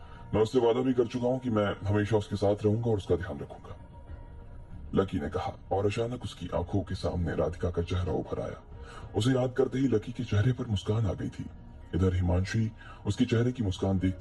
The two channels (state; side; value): identical; both; correlation 1.00